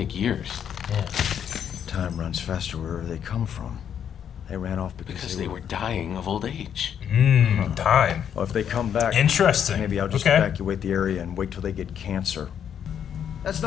years. Yeah. Time runs faster wherever they come from. They ran off because they were dying of old age. Time. Well, if they come back, Interesting. maybe I'll just evacuate the area and wait till they get cancer. That's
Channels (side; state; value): right; quieter; 8.7 dB